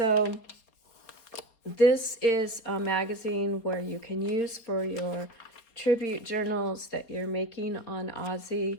this is a magazine where you can use for your tribute journals that you're making on Ozzy,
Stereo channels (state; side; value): late; right; 4.3 ms